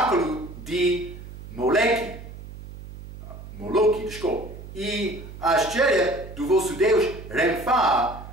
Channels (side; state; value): right; noise; hum, 14 dB below the sound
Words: de Moloque, e a estrela do vosso Deus Renfá,